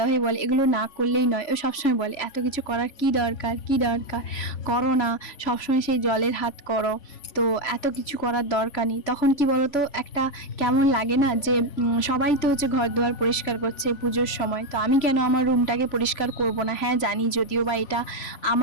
বলে এগুলো না করলেই নয়, ও সবসময় বলে এত কিছু করার কি দরকার, কি দরকার, করো না, সবসময় সেই জলের হাত করো, তো এত কিছু করার দরকার নেই। তখন কি বলতো, একটা কেমন লাগে না যে সবাই তো হচ্ছে ঘর দুয়ার পরিষ্কার করছে পুজোর সময়, তো আমি কেন আমার রুমটাকে পরিষ্কার করব না। হ্যাঁ জানি, যদিও বা এটা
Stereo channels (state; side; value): late; right; 3.5 ms